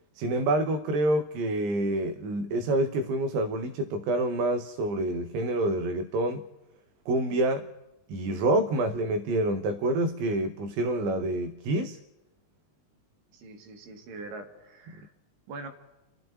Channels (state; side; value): late; left; 20 ms